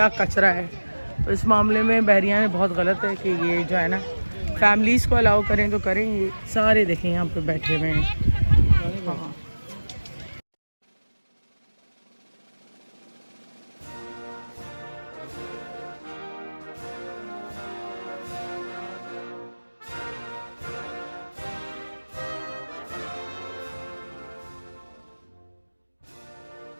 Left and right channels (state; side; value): inverted; both; correlation -1.00